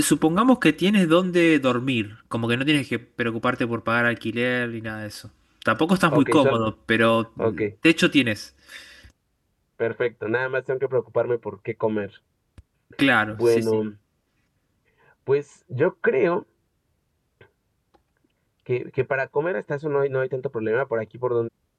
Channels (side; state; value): both; identical; correlation 1.00